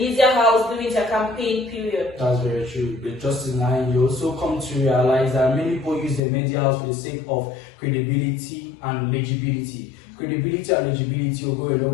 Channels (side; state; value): right; drops out; at 6.2 s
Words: house during their campaign period. That's very true. But just in line, you also come to realize that many people use the media house for the sake of credibility and legibility. Credibility and legibility will go a